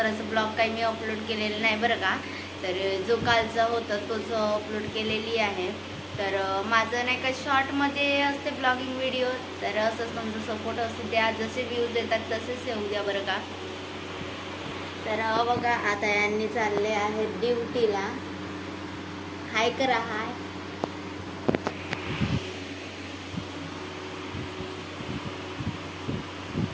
ब्लॉग काही मी अपलोड केलेलं नाही बरं का. तर जो कालचा होता तोच अपलोड केलेली आहे. तर माझं नाही का शॉर्टमध्ये असते ब्लॉगिंग व्हिडिओ, तर असंच तुमचा सपोर्ट असू द्या, जसे व्ह्यूज येतात तसेच येऊ द्या बरं का. तर बघा आता यांनी चालले आहेत ड्युटीला. हाय करा, हाय.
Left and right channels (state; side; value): identical; both; correlation 1.00